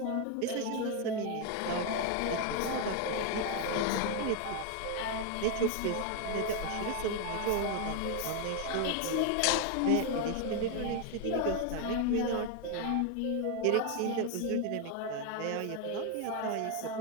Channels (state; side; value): different; both; correlation 0.01